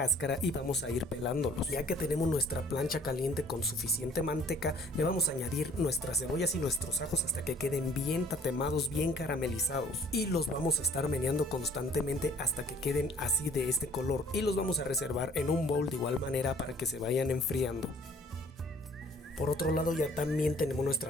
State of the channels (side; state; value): both; normal; correlation 0.56